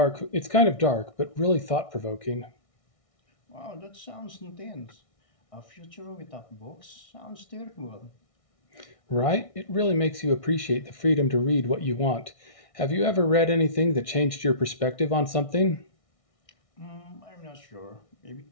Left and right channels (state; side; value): late; right; 1.6 ms